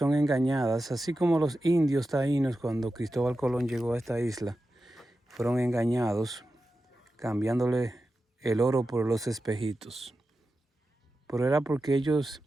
engañadas, así como los indios taínos cuando Cristóbal Colón llegó a esta isla, fueron engañados cambiándole el oro por los espejitos. Pero era porque ellos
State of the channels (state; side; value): normal; both; correlation 0.92